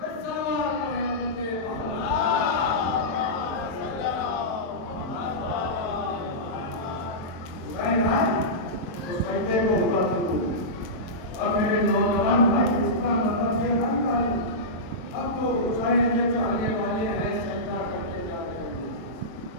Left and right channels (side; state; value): right; late; 22 ms